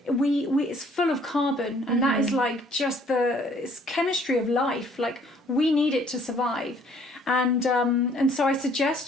it's full of carbon, and that is like just it's chemistry of life. Like, we need it to survive. And so I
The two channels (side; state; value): both; normal; correlation 0.60